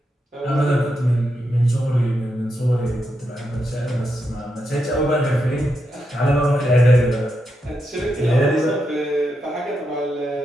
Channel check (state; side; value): normal; both; correlation 0.84